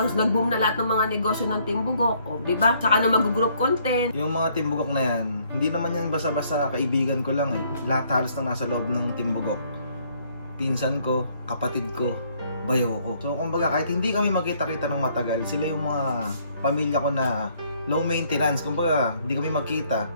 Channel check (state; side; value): inverted; both; correlation -0.66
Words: nag-boom na lahat ng mga negosyo ng Team Bugok, oh, di ba? Saka na mag-group content. Yung mga Team Bugok na yan, hindi naman yan basta-basta kaibigan ko lang eh. Lahat halos na nasa loob ng Team Bugok. Pinsan ko, kapatid ko, bayo ko. So, kumbaga, kahit hindi kami magkita-kita ng matagal, sila yung mga pamilya ko na low maintenance. Kumbaga, hindi kami magkita.